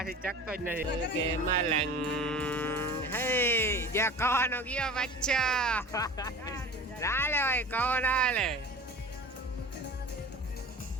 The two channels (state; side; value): normal; both; correlation 0.38